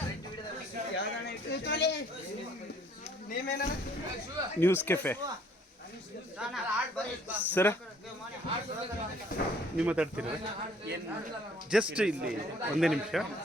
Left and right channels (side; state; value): both; normal; correlation 0.59